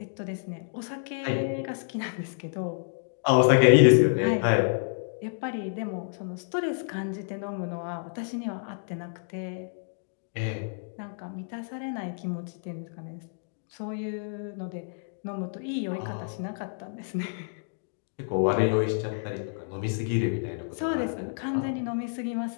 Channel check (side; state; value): right; silent; digital silence